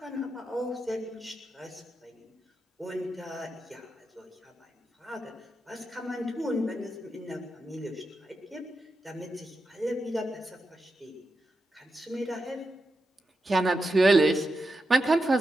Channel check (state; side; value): normal; both; correlation 0.88